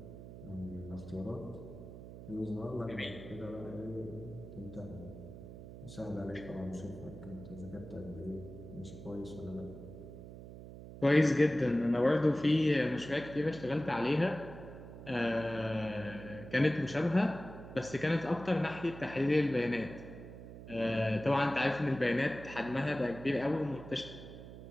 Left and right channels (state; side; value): noise; right; hum, 13 dB below the sound